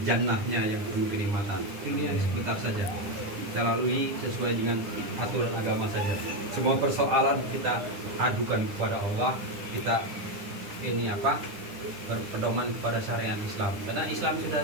jannahnya yang penuh kenikmatan. Ini sebentar saja kita lalui sesuai dengan aturan agama saja. Semua persoalan kita adukan kepada Allah, kita berpedoman kepada syariat Islam. Karena Islam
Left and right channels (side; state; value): left; late; 9.8 ms